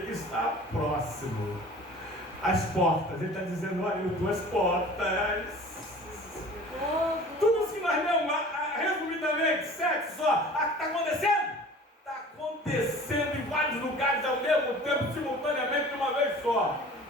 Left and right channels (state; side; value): normal; both; correlation 0.44